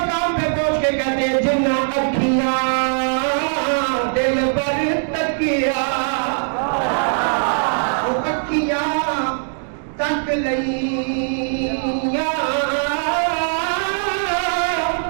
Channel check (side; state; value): left; silent; digital silence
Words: پہ پہنچ کے کہتے ہیں جنہ اکھیاں دل پر تکیا, وہ اکھیاں تک لئیاں,